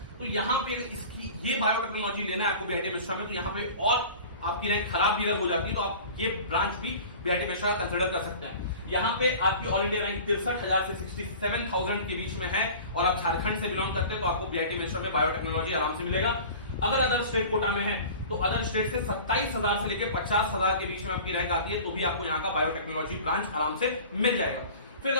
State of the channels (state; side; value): inverted; both; correlation -0.40